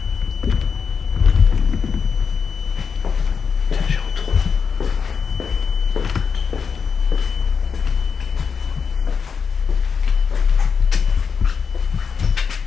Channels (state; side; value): quieter; right; 6.1 dB